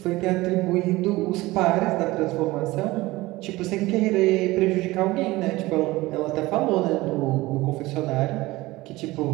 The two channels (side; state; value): left; quieter; 19.5 dB